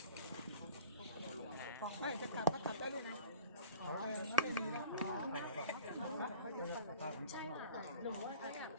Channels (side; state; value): both; inverted; correlation -0.42